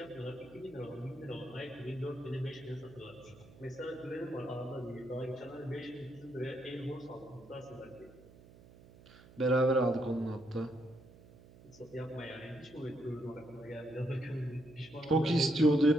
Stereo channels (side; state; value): right; noise; hum, 21 dB below the sound